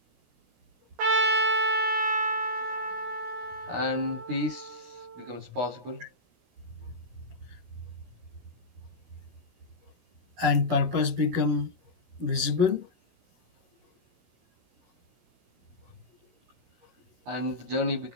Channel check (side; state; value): left; late; 16 ms